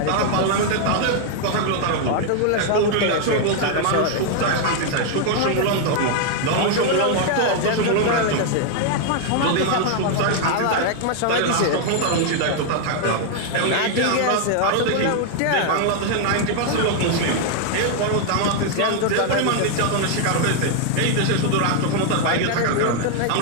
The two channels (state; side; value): different; both; correlation 0.00